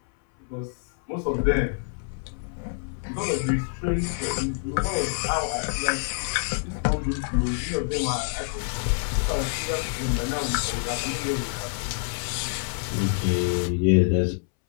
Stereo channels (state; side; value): silent; right; 60 dB below the other